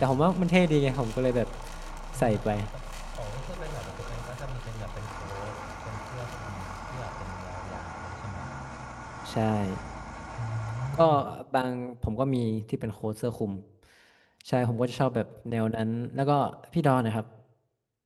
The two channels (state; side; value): identical; both; correlation 1.00